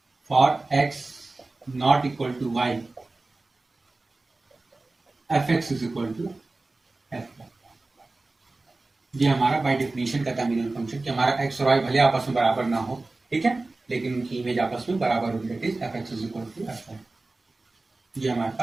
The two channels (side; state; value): left; quieter; 3.2 dB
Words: for x not equal to y fx is equal to f। ये हमारा बाय डेफिनेशन का था मिनिमम फंक्शन कि हमारा x और y भले आपस में बराबर ना हो, ठीक है, लेकिन उनकी इमेज आपस में बराबर होगी, that is fx is equal to f। ये हमारे